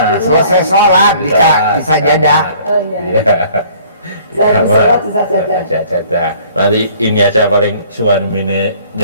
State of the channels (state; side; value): inverted; both; correlation -0.55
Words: Selesai sholat bisa jadah. Oh iya. Saya sholat bisa Jadah. Nanti ini aja paling suamine